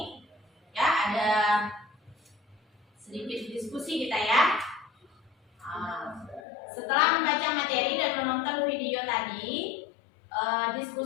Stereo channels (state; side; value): drops out; right; at 6.5 s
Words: ya, ada sedikit diskusi kita ya. Setelah membaca materi dan menonton video tadi,